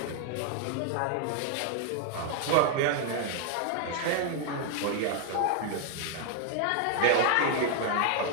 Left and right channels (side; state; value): both; different; correlation 0.00